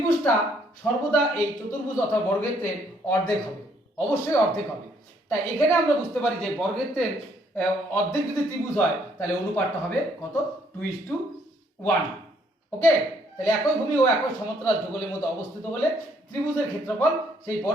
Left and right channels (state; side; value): normal; both; correlation 0.67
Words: সর্বদা এই চতুর্ভুজ অথবা বর্গক্ষেত্রের অর্ধেক হবে, অবশ্যই অর্ধেক হবে। তাই এখানে আমরা বুঝতে পারি যে বর্গক্ষেত্রের অর্ধেক যদি ত্রিভুজ হয়, তাহলে অনুপাতটা হবে কত 2:1। ওকে, তাহলে একই ভূমি ও একই সমান্তরাল যুগলের মধ্যে অবস্থিত হলে ত্রিভুজের ক্ষেত্রফল সেই